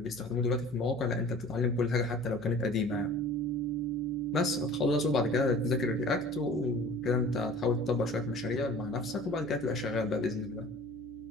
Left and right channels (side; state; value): left; noise; hum, 22 dB below the sound